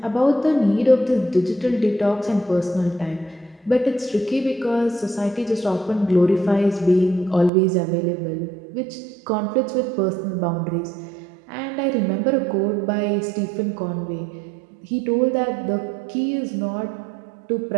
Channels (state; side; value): drops out; left; at 7.5 s